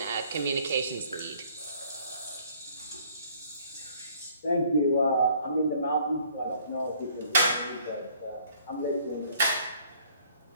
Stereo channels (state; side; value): inverted; both; correlation -0.59